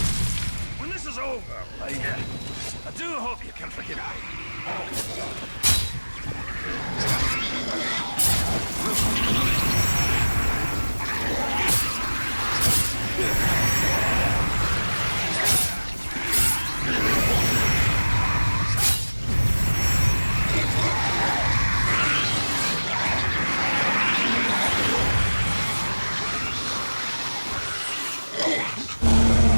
When this is over, I do hope you can forgive me.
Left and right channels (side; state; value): both; inverted; correlation -1.00